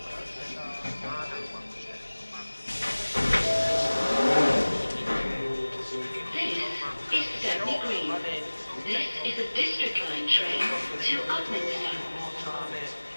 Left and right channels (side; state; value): both; inverted; correlation -1.00